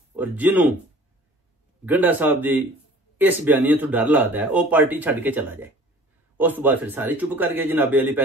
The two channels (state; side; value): normal; both; correlation 0.48